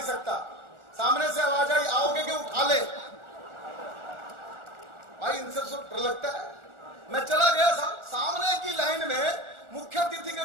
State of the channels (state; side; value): late; left; 1.4 ms